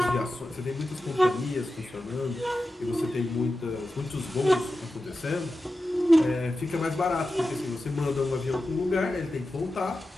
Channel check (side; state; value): both; normal; correlation 0.92